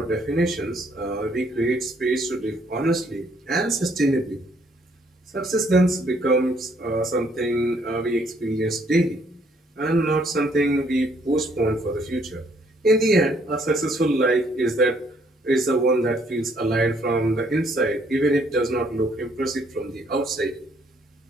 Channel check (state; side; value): normal; both; correlation 0.66